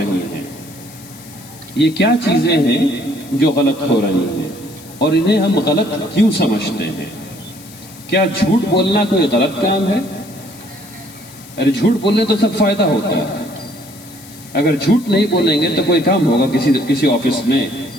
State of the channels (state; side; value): noise; left; hiss, 20 dB below the sound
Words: ہیں۔ یہ کیا چیزیں ہیں جو غلط ہو رہی ہیں اور انہیں ہم غلط کیوں سمجھتے ہیں؟ کیا جھوٹ بولنا کوئی غلط کام ہے؟ ارے جھوٹ بولنے تو سب فائدہ ہوتا ہے۔ اگر جھوٹ نہیں بولیں گے تو کوئی کام ہوگا کسی آفس میں